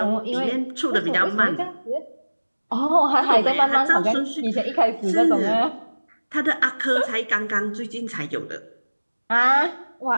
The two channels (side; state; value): both; inverted; correlation -1.00